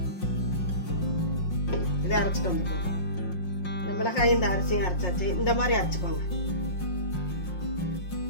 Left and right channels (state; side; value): late; right; 5.6 ms